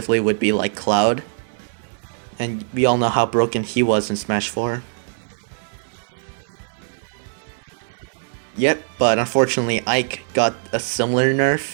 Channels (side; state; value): left; silent; 59 dB below the other